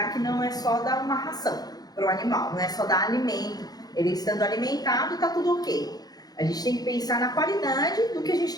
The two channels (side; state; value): right; late; 0.19 ms